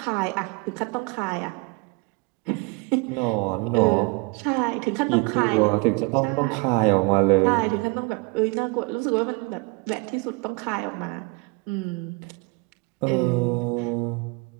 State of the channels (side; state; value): left; quieter; 28.3 dB